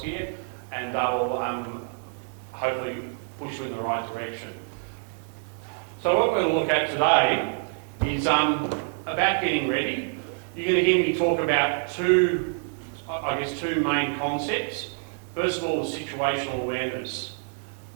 here, and they will hopefully push you in the right direction. So what we're going to look at today is about getting ready. You're going to hear me talk about two main concepts. First of all is situational awareness,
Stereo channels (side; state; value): left; silent; 55 dB below the other